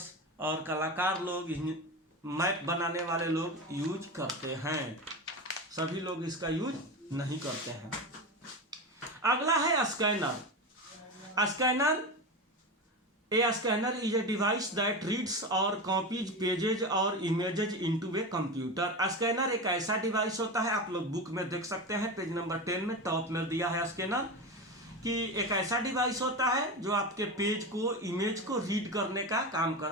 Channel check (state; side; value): normal; both; correlation 0.22